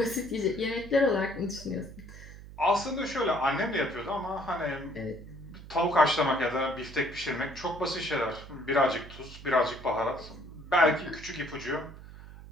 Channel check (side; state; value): right; noise; hum, 16 dB below the sound